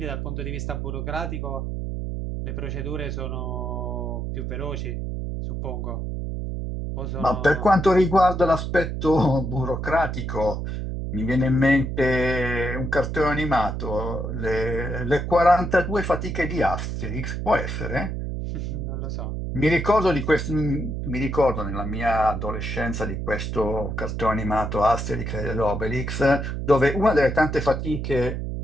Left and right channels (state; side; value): noise; right; hum, 4 dB below the sound